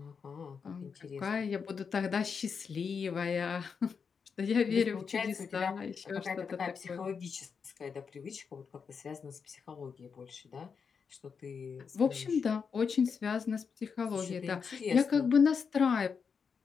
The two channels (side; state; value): right; quieter; 6.0 dB